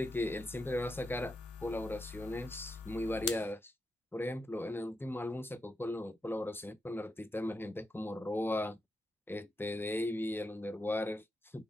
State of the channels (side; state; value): both; normal; correlation 0.85